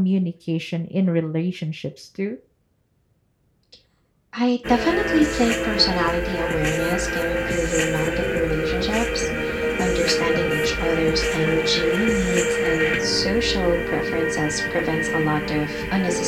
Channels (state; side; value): identical; both; correlation 1.00